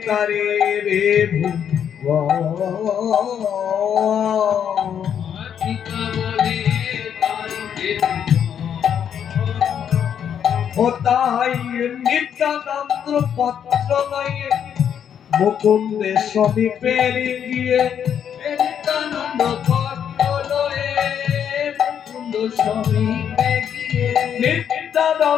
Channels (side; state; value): right; quieter; 8.6 dB